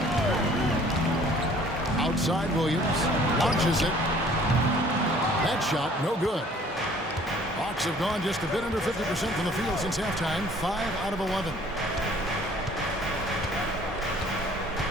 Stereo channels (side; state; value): both; normal; correlation 0.55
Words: Outside Williams. Launches it. That shot, no good. Hawks have gone just a bit under 50% from the field since halftime. 5 out of 11.